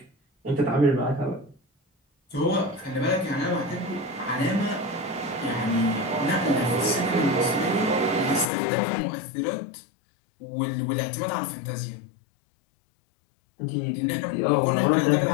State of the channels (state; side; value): drops out; right; at 8.5 s